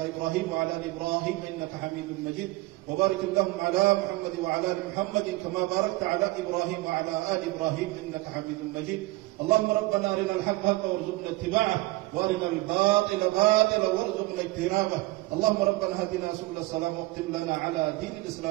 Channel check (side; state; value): left; quieter; 20.6 dB